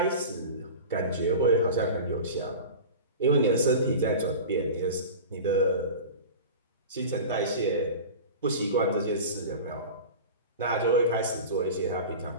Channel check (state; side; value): inverted; both; correlation -0.33